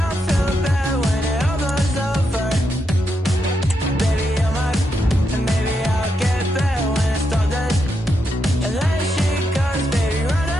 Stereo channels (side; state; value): both; normal; correlation 0.83